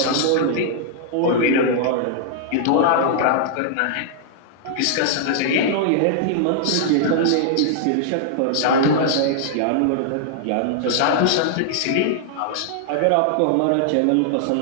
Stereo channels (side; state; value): both; different; correlation -0.01